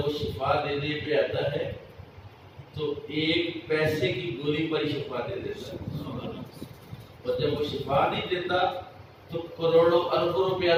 شفا دینے پہ آتا ہے تو 1 پیسے کی گولی پر ہی شفا دے دیتا ہے. اور جب وہ شفا نہیں دیتا تو کروڑوں اربوں روپیہ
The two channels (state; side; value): identical; both; correlation 1.00